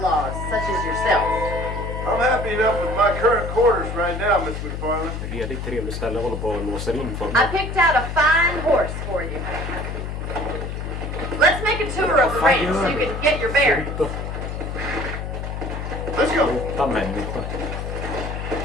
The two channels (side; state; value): left; noise; hum, 5 dB below the sound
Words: such as yourself. I'm happy enough with my current quarters right now, Miss McFarlane. Redigt trevligt ställe, håller på och låser in för I mig. picked out a fine horse for you. Let's make a tour of the range so you can get your bearings. Sluta. Let's go. Sluta människa.